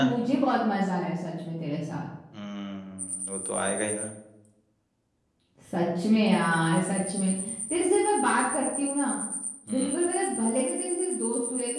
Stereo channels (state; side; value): identical; both; correlation 1.00